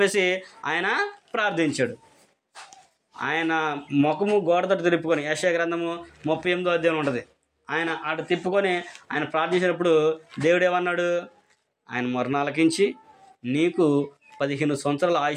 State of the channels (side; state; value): both; identical; correlation 1.00